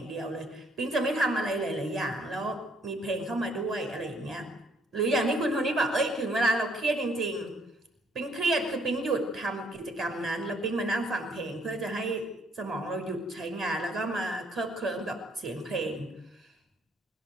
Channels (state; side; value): normal; both; correlation 0.66